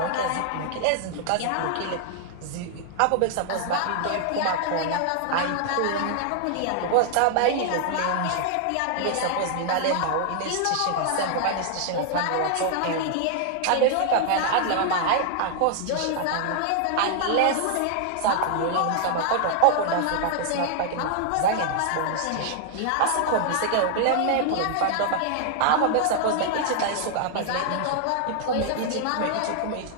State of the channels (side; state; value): both; different; correlation 0.00